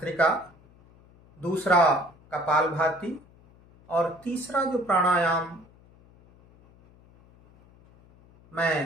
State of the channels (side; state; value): left; noise; hum, 27 dB below the sound